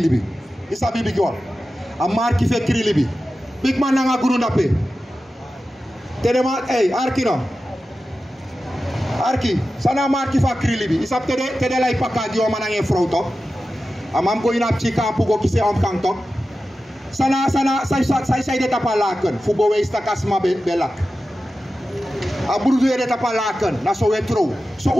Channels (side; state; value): both; normal; correlation 0.93